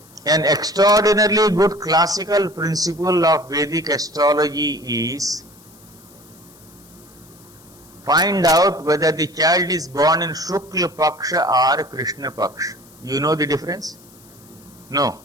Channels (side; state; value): left; noise; hiss, 26 dB below the sound